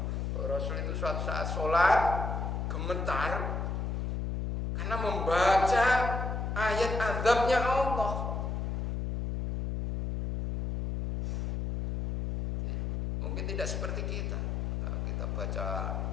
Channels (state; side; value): noise; left; hum, 2 dB below the sound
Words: Rasul itu suatu saat sholat gemetar karena membaca ayat azabnya Allah. Mungkin tidak seperti kita. Kita baca